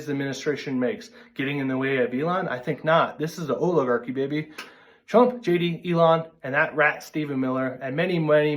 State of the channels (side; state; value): both; identical; correlation 1.00